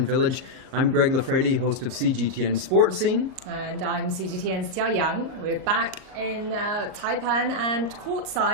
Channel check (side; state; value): left; late; 38 ms